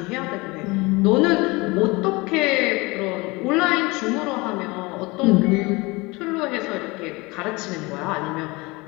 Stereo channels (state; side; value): quieter; right; 24.2 dB